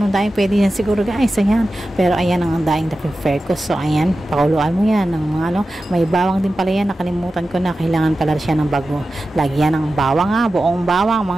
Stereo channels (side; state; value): both; normal; correlation 0.93